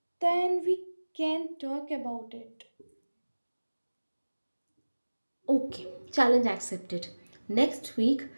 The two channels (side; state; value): both; inverted; correlation -1.00